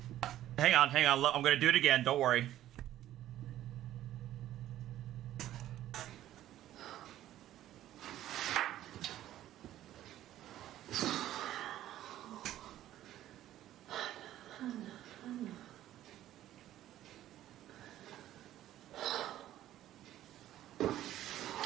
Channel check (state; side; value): quieter; left; 13.1 dB